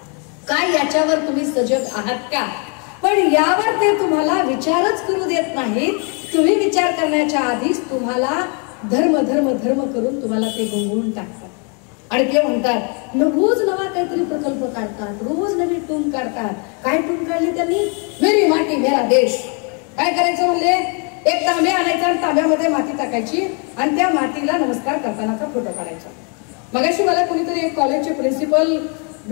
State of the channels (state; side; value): quieter; right; 37.0 dB